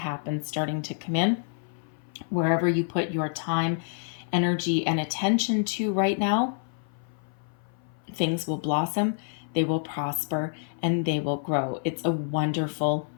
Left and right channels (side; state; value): right; silent; 56 dB below the other